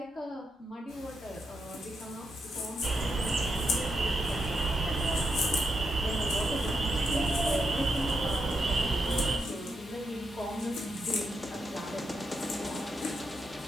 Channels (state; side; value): normal; both; correlation 0.82